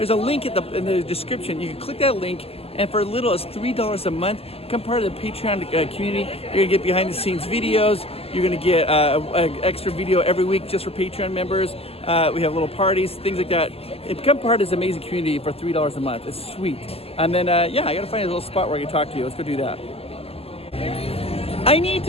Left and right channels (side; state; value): right; late; 0.29 ms